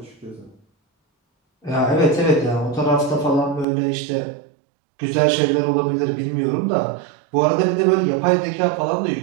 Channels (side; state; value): left; drops out; at 3.7 s